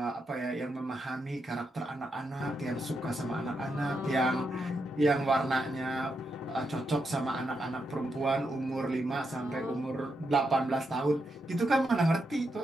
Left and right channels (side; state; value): both; normal; correlation 0.83